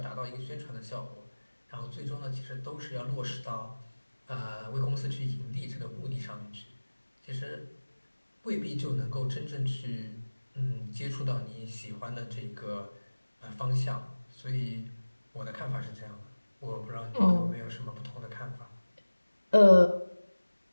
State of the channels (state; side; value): inverted; both; correlation -1.00